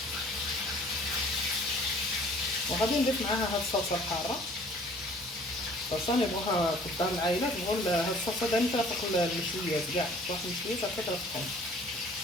وغادي نضيف معاها هاد الصلصه الحاره. الصلصه نبغوها في الدار العائله، نبغوا هاد الصلصه دائما ترافق المشويات كاع، واحد المشويات هكا ترافقهم.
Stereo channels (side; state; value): both; normal; correlation 0.53